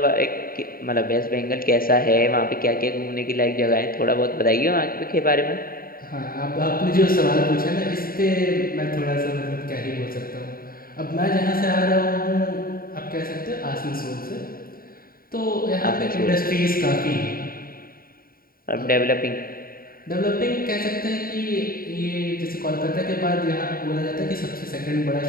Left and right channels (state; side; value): late; right; 0.43 ms